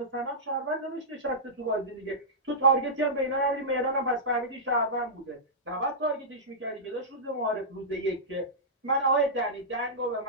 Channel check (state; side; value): normal; both; correlation -0.14